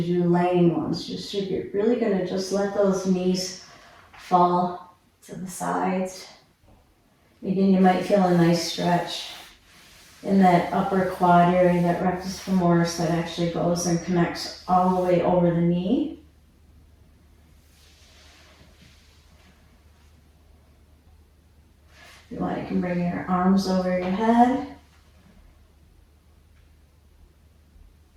do laying ones. Just so you're really gonna just let those knees fall to the sides. Again, you might feel a nice stretch in that upper quad area, that rectus femoris that actually goes and connects all the way over the knee. If you want, you can bring your arms over your head.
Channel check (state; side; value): identical; both; correlation 1.00